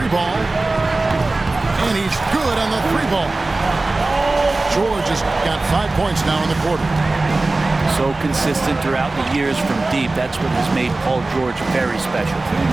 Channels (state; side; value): quieter; left; 3.2 dB